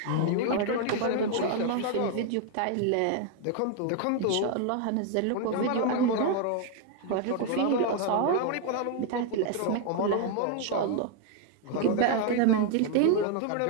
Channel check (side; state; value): both; different; correlation 0.00